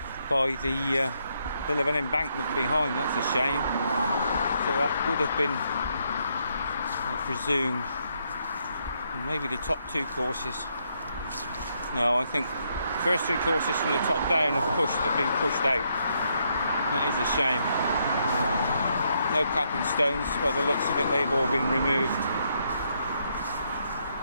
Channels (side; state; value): both; inverted; correlation -0.75